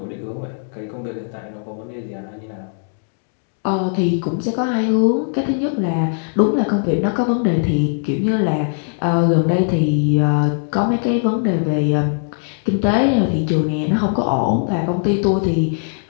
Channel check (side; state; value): right; silent; digital silence